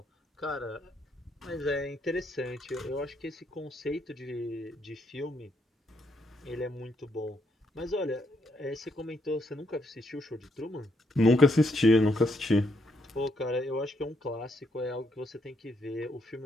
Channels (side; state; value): both; normal; correlation 0.75